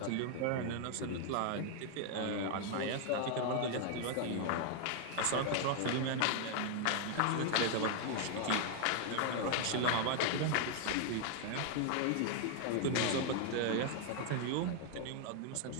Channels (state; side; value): different; both; correlation 0.00